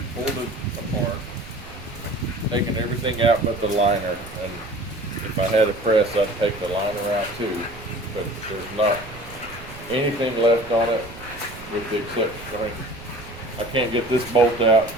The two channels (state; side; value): noise; right; rumble, 16 dB below the sound